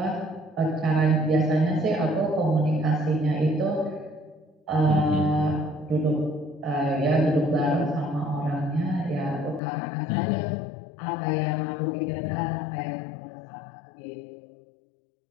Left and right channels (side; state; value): right; drops out; at 9.6 s